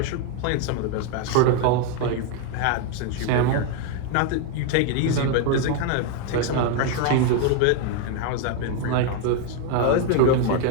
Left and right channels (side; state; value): both; different; correlation 0.01